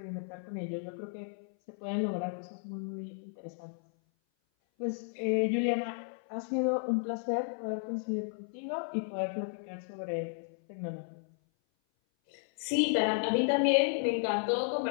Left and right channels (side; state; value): right; silent; 55 dB below the other